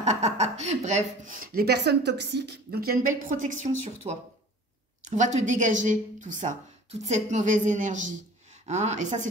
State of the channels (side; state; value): both; normal; correlation 0.44